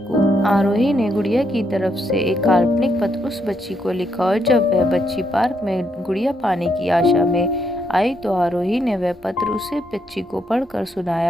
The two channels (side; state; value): both; normal; correlation 0.77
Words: आरोही ने गुड़िया की तरफ से एक काल्पनिक पत्र उस बच्ची को लिखा और जब वह बच्ची पार्क में गुड़िया पाने की आशा में आई तो आरोही ने वह पत्र उसे बच्ची को पढ़कर